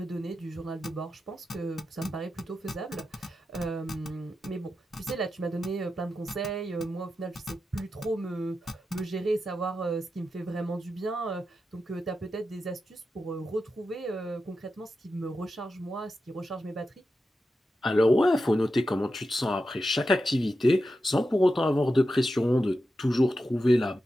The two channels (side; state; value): both; normal; correlation 0.90